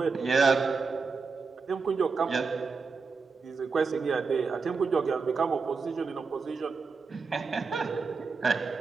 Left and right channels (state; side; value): quieter; left; 4.8 dB